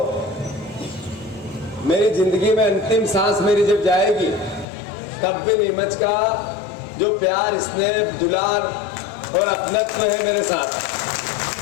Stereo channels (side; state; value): right; drops out; at 4.7 s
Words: मेरी जिंदगी में अंतिम सांस मेरी जब जाएगी तब भी नीमच का जो प्यार, स्नेह, दुलार और अपनत्व है मेरे साथ,